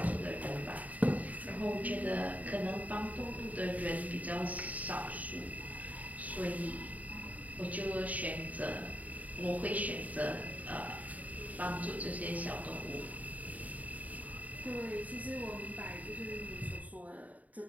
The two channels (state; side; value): late; left; 0.073 ms